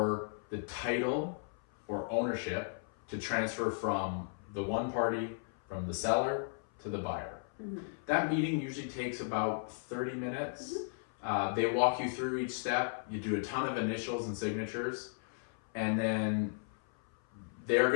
the title or ownership to transfer from the one party, from the seller to the buyer. That meeting usually takes about 30 minutes. They walk you through each step. You do a ton of initials and signatures, and then they're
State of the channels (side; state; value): right; silent; 54 dB below the other